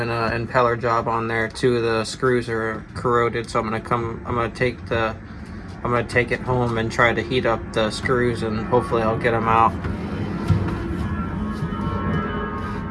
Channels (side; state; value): both; identical; correlation 1.00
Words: an impeller job on there. Two of the screws are corroded, so I'm gonna take it home and try to heat up the screws, and hopefully I'll get them out.